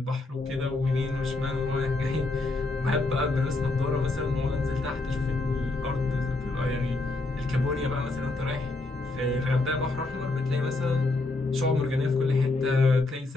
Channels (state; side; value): quieter; right; 3.1 dB